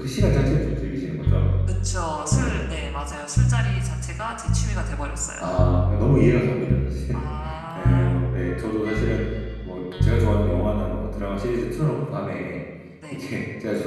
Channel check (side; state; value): both; identical; correlation 1.00